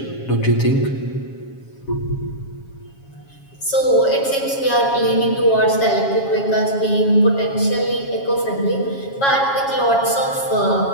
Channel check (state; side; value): late; right; 7.3 ms